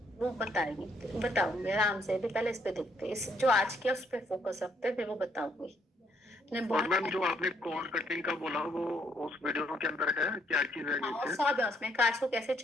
वो बताएंगे, बताऊंगी आराम से, अभी पहले इस पे देखते हैं, इस जो आज किया उस पे फोकस रखते हैं, फिर वो बताऊंगी। ने और बहुत मैम जो आपने कॉर्ड कटिंग का बोला वो उस वीडियो के अंदर है, क्या चीज है हाँ, नीचे? सब है उसमें, कार्ड्स को कैसे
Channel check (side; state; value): both; normal; correlation 0.70